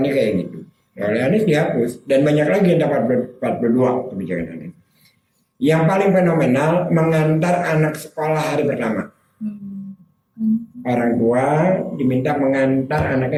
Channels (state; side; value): identical; both; correlation 1.00